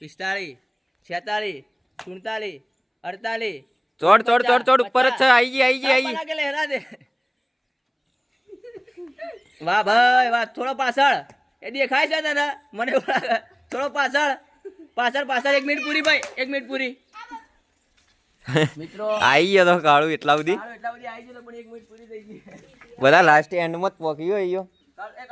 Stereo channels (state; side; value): identical; both; correlation 1.00